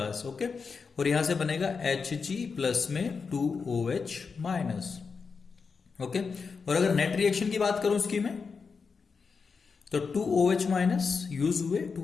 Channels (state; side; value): quieter; right; 5.2 dB